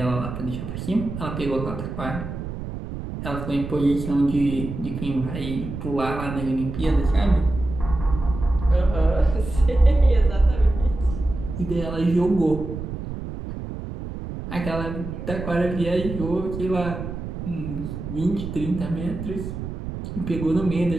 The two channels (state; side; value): noise; right; rumble, 7 dB below the sound